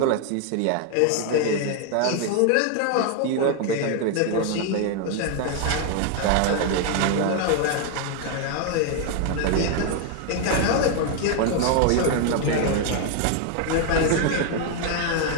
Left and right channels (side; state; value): both; different; correlation 0.00